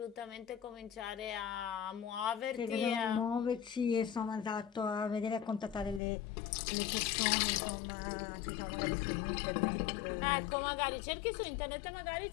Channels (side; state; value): right; drops out; at 6.0 s